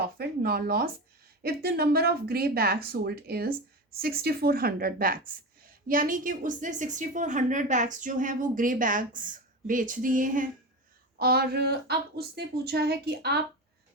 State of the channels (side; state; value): both; normal; correlation 0.23